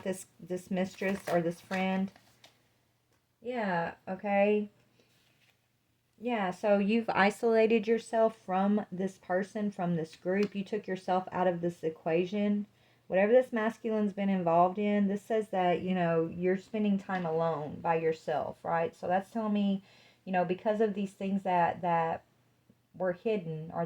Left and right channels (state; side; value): identical; both; correlation 1.00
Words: this mistress or this friend. Yeah, okay. Yeah, so you've isolated yourself from this person, from this group. You took yourself out of this equation. Whatever this masculine's been involved in, this says that, you're spending time alone by yourself, right? So that's telling me, because of these things that were hidden, or